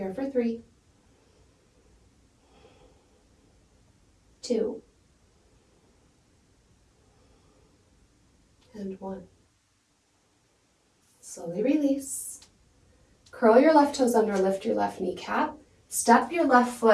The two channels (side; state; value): both; identical; correlation 1.00